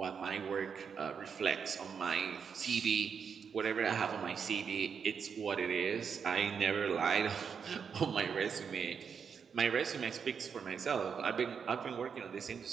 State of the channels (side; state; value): left; quieter; 6.6 dB